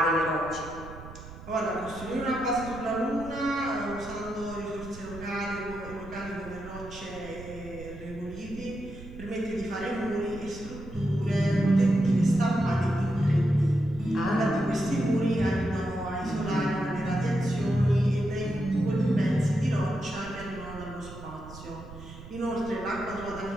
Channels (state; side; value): noise; right; rumble, 15 dB below the sound